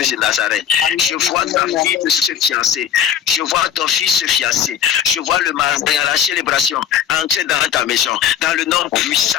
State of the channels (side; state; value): right; quieter; 8.9 dB